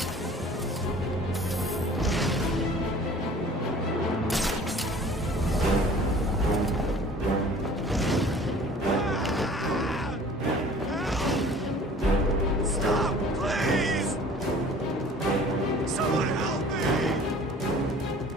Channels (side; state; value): both; normal; correlation 0.48